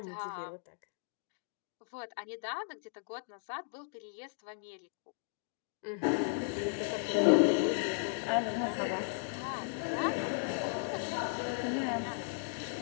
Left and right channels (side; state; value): right; silent; digital silence